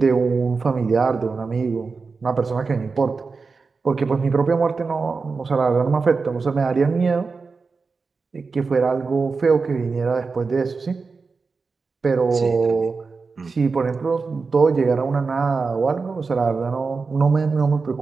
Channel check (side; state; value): left; quieter; 4.5 dB